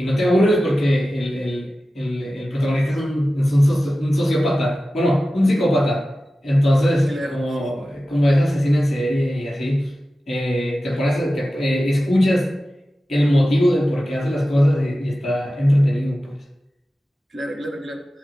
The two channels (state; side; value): normal; both; correlation 0.95